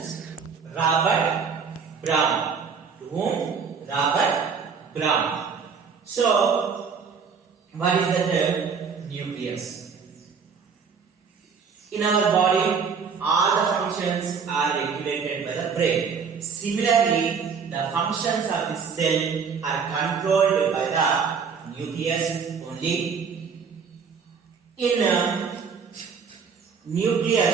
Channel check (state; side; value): quieter; left; 5.9 dB